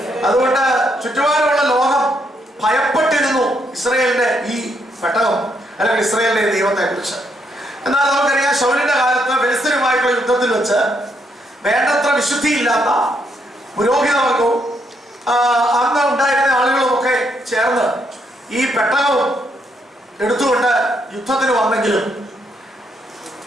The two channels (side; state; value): both; normal; correlation 0.75